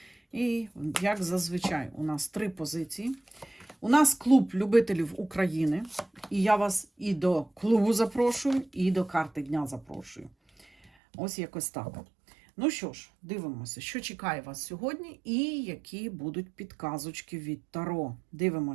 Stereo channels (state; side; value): drops out; left; at 10.9 s